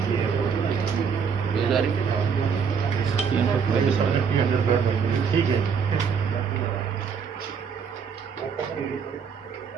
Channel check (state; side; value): quieter; left; 6.4 dB